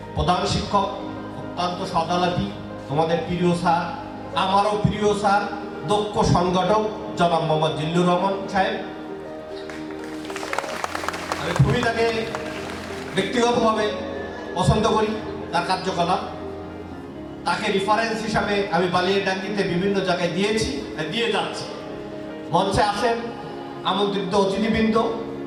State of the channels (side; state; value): both; identical; correlation 1.00